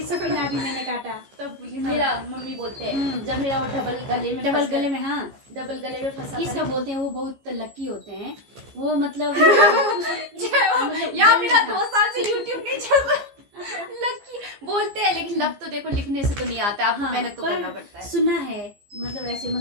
सबके नाम भी मैंने काटा। तब मेरा मम्मी बोलते हैं जब मेरा वो डबल गले में हाँ, डबल गले में फंसा किसका बोलते हैं, वो बहुत लकी होते हैं वो, मतलब यार मेरा 2 साल से YouTube नहीं चल रहा। लकी बोलते हैं, लेकिन लक तो देखो लिखने से तो नहीं आता, आपको मेहनत तो करना पड़ता है। सुना है, मतलब ऐसे,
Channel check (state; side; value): late; left; 15 ms